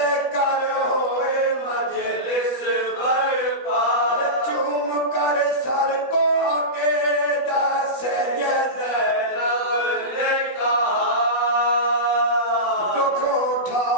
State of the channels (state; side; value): late; right; 16 ms